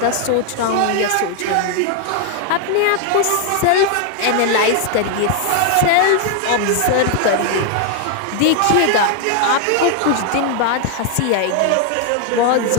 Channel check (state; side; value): different; both; correlation 0.00